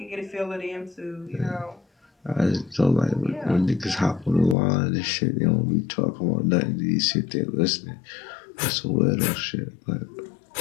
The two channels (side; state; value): right; drops out; at 4.5 s